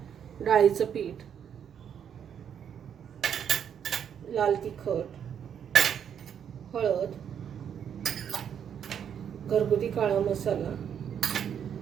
डाळीचं पीठ, लाल तिखट, हळद, घरगुती काळा मसाला,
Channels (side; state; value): left; quieter; 8.4 dB